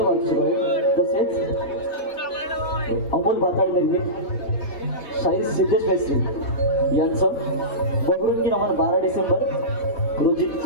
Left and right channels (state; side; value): late; right; 4.1 ms